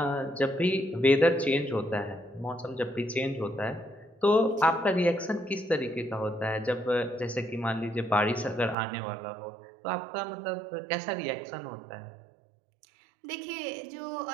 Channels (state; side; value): drops out; left; at 8.8 s